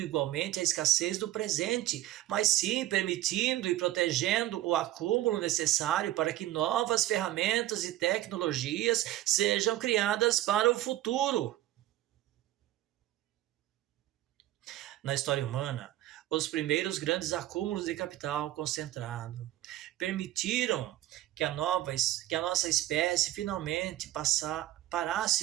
igualmente a escassez do presente, mas sim permitindo e protegendo o acúmulo necessário para que novas ferramentas e tecnologias sejam criadas para o futuro. Na história humana, os primeiros grandes acúmulos de capital concentrado permitiram que a nossa espécie finalmente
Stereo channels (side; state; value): left; quieter; 14.7 dB